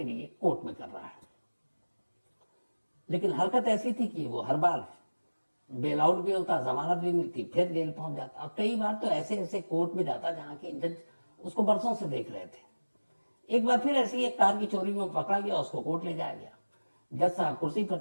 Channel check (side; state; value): both; inverted; correlation -1.00